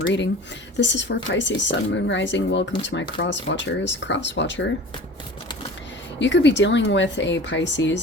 This is for Pisces Sun, Moon, Rising. Welcome to my cross watchers. Cross watcher, you could be dealing with a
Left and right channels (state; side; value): normal; both; correlation 0.40